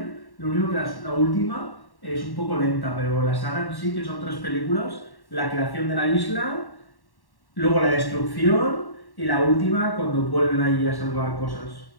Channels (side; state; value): right; late; 1.1 ms